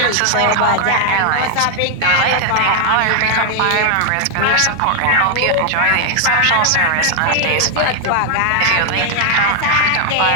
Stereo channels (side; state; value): both; different; correlation 0.00